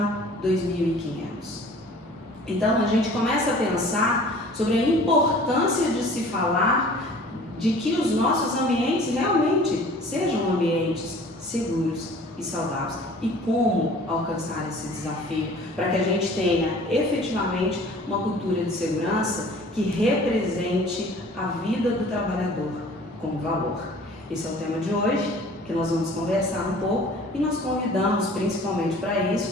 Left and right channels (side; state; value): both; normal; correlation 0.48